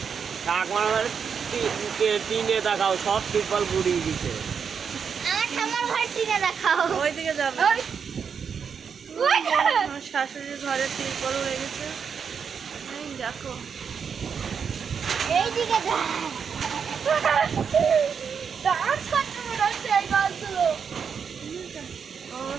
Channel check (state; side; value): quieter; left; 6.6 dB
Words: শাক মারার টিনে দেখাও, সব ত্রিপল গুড়িয়ে দিছে। আমার ঠাম্মার ঘর টিনে দেখাও। ওইদিকে যাবে। আমার শাশুড়ির ঘরে তিরপল হয়ে গেছে। এই দেখো, এইদিকে